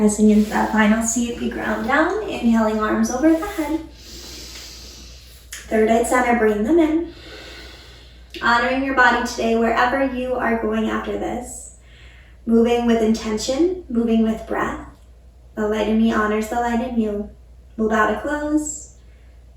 into that final seat, we ground down, inhaling arms over the head. Third eye center, bring them in. Honoring your body today wherever you are going after this. Moving with intention, moving with breath. The light in me honors the light in you. We'll bow to close.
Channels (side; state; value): both; identical; correlation 1.00